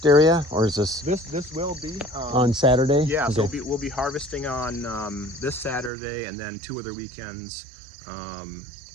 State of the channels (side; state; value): left; drops out; at 5.9 s